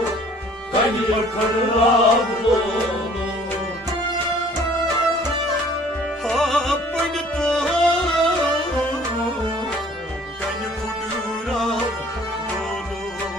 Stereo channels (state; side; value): normal; both; correlation 0.54